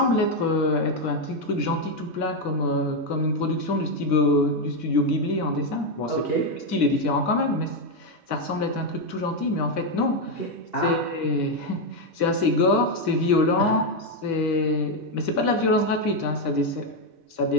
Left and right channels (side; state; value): left; late; 2.2 ms